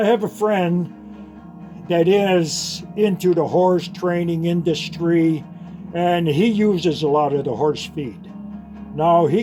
have a friend that is into the horse training industry, and he uses a lot of the horse feed. Now, he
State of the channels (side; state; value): both; identical; correlation 1.00